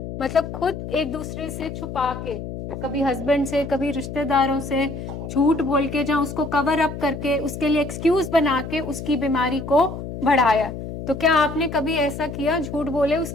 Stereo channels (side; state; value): left; noise; hum, 8 dB below the sound